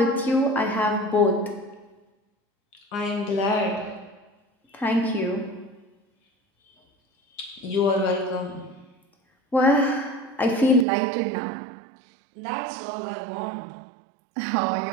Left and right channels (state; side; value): drops out; left; at 10.9 s